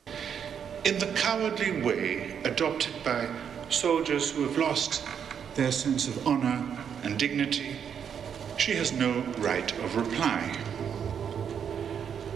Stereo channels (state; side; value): quieter; left; 7.8 dB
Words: In the cowardly way adopted by soldiers who have lost their sense of honor and dignity, she has no right of reply.